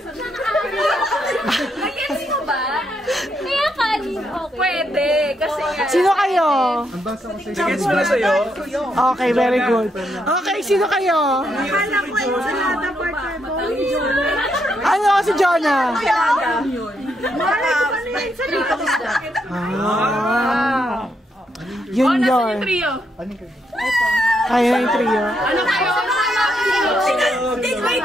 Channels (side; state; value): both; normal; correlation 0.78